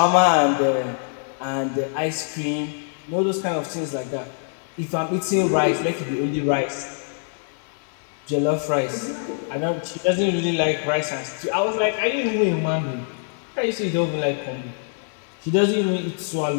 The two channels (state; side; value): silent; right; 63 dB below the other